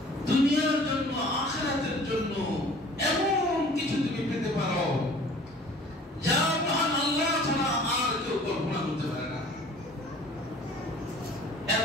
দুনিয়ার জন্য, আখিরাতের জন্য এমন কিছু তুমি পেতে পারো যা মহান আল্লাহ ছাড়া আর কেউ কল্পনা করতে পারে না।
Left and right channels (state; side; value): normal; both; correlation 0.49